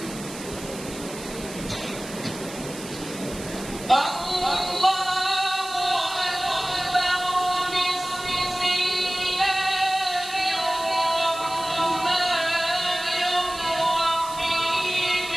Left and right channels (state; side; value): noise; right; hiss, 13 dB below the sound